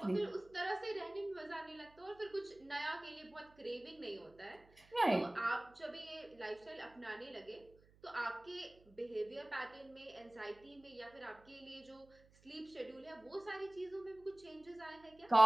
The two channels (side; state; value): right; noise; hum, 27 dB below the sound